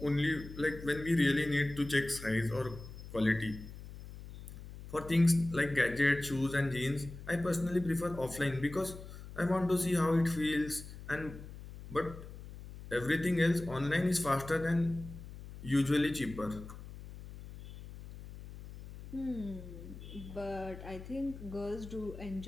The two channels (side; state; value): left; noise; hum, 13 dB below the sound